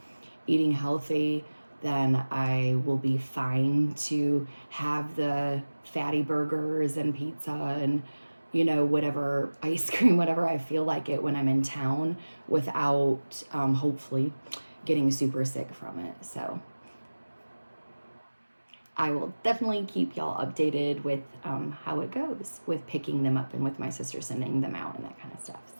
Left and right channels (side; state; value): both; inverted; correlation -1.00